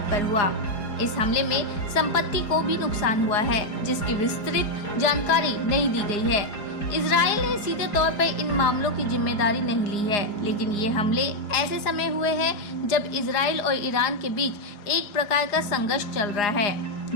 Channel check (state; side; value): late; right; 4.9 ms